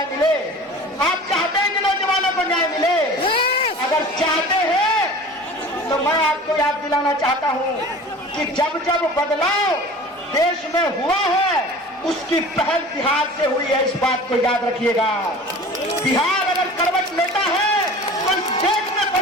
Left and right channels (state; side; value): normal; both; correlation 0.41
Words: मिले, आप चाहते हैं कि नौजवानों को न्याय मिले। अगर चाहते हैं तो मैं आपको याद दिलाना चाहता हूं कि जब जब बदलाव देश में हुआ है उसकी पहल बिहार से हुई है। इस बात को याद रखिएगा। बिहार अगर करवट लेता है तो इस देश में